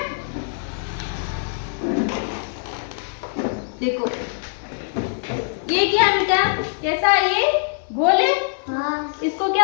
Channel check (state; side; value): silent; right; 58 dB below the other